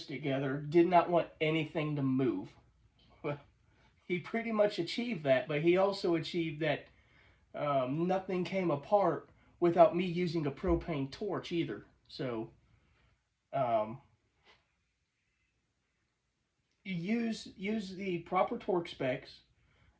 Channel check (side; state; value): both; identical; correlation 1.00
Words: together did not want anything to move. Well, he pretty much achieved that, but he also achieved that nothing came apart without me using a propane torch either. So, you use the proper torque specs